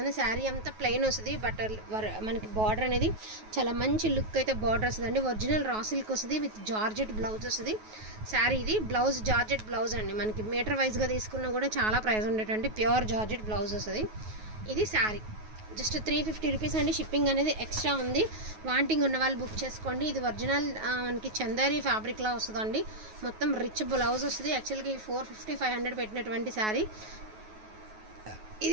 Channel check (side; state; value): left; late; 9.4 ms